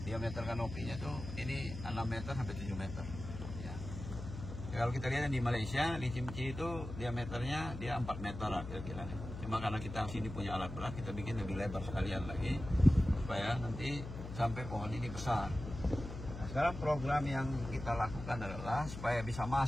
Diameter kanopinya tuh ini 6 meter sampai 7 meter. Ya. Kalau kita lihat di Malaysia, di Cimci itu diameternya dia 4 meter lah kira-kira. Cuma karena kita sini punya alat berat, kita bikin lebih lebar sekalian lagi supaya nanti sampai pohon ini besar. Nah, sekarang program yang kita lakukan adalah supaya bisa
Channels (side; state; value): left; noise; hum, 9 dB below the sound